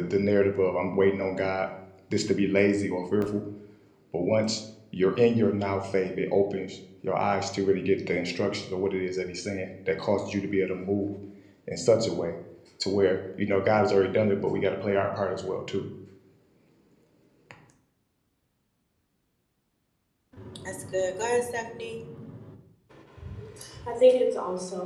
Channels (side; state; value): both; identical; correlation 1.00